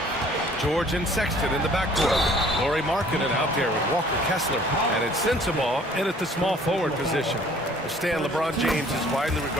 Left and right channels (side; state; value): both; normal; correlation 0.54